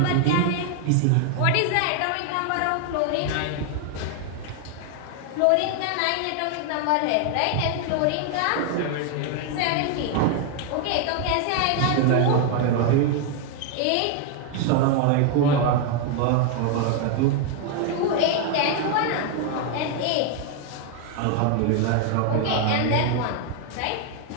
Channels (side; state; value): both; different; correlation 0.00